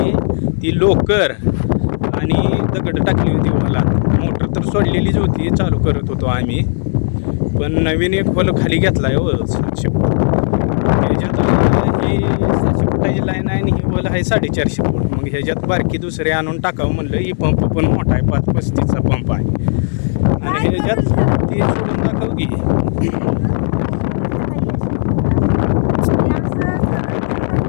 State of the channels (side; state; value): right; silent; 63 dB below the other